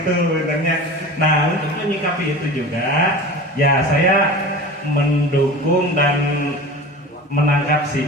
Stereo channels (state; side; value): normal; both; correlation 0.35